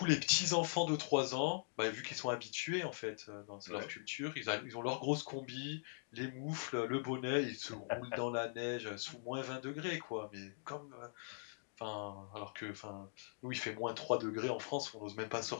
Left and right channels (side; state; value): right; silent; digital silence